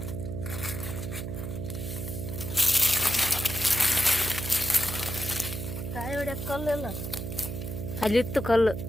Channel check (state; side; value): noise; right; hum, 6 dB below the sound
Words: ಕಾಯಿ ಹೊಡ್ಯಕ್ಕೆ ಕಲ್ಲು ಇಲ್ಲ ಅಲ್ಲಿತ್ತು ಕಲ್ಲು.